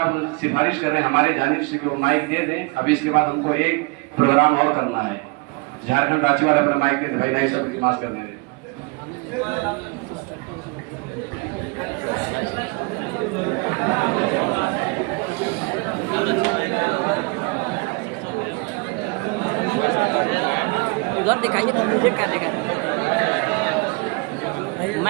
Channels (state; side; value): quieter; left; 28.5 dB